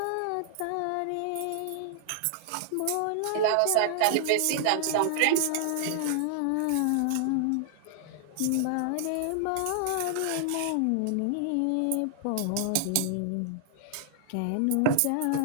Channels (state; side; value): different; both; correlation -0.01